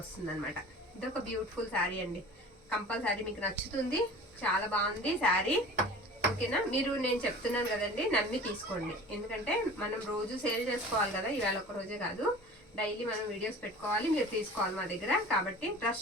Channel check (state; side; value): normal; both; correlation 0.41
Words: వస్తుంది అనమాట. ఇదొక బ్యూటిఫుల్ శారీ అండి. కంపల్సరీ మీకు నచ్చుతుంది. చాలా బాగుంది శారీ. ఓకేనా. మీరు నేను చెప్తున్నాను కదండి, నమ్మి తీసుకోండి. ఎందుకంటే మనం రోజు సేల్ చేసుకోవాలి కదా, ఇవాళ ఒక రోజే కాదు, డైలీ మనం వీడియోస్ పెట్టుకోవాలి, మీరు తీసుకోవాలి మా దగ్గర. కాబట్టి